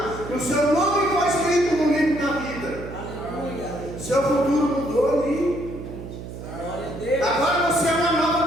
que o seu nome foi escrito no livro da vida. Aleluia. Seu futuro mudou ali. Glória a Deus. Agora você é uma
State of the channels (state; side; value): noise; right; hum, 11 dB below the sound